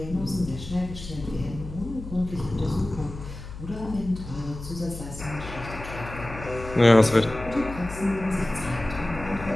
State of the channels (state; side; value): noise; left; hum, 11 dB below the sound